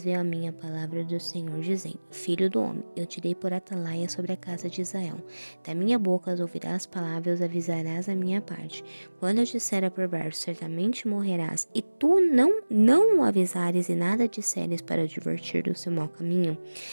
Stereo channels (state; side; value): inverted; both; correlation -1.00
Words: veio a minha palavra do Senhor, dizendo: Filho do homem, eu te dei por atalaia sobre a casa de Israel. Da minha boca ouvirás palavras, avisarás a minha parte. Quando eu disser a perverso, certamente morrerás, e tu não o avisares e nada disseres para advertir do seu mau caminho,